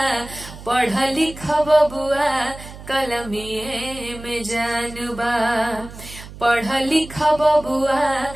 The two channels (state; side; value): noise; right; hum, 15 dB below the sound